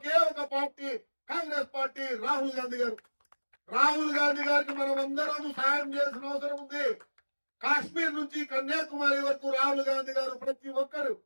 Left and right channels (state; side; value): inverted; both; correlation -1.00